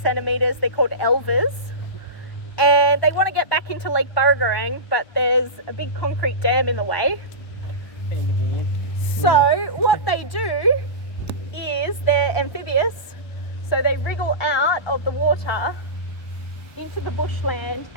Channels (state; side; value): late; right; 1.1 ms